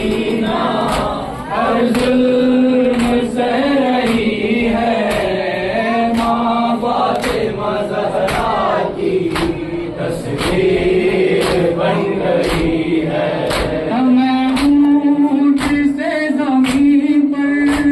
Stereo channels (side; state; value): both; identical; correlation 1.00